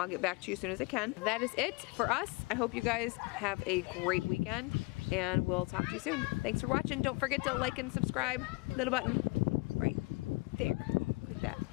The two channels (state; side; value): quieter; right; 26.2 dB